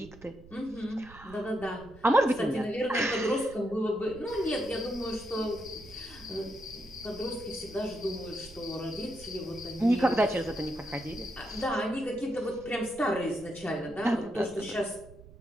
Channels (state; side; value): noise; right; rumble, 20 dB below the sound